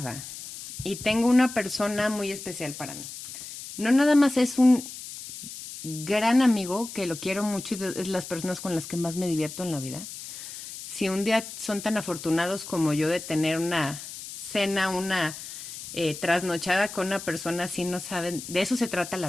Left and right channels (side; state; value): left; noise; hiss, 11 dB below the sound